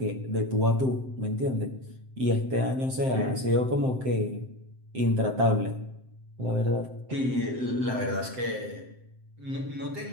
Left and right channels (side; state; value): left; late; 7.7 ms